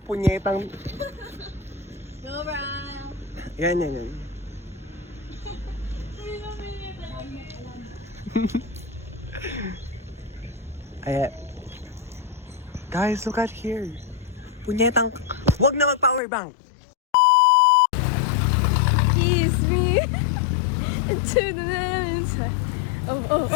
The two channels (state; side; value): drops out; right; at 16.2 s